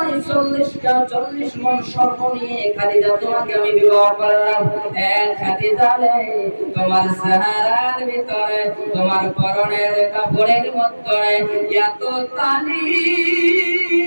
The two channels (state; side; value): inverted; both; correlation -1.00